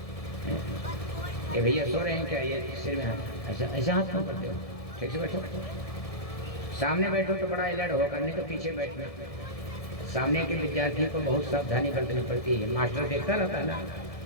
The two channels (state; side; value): late; right; 1.7 ms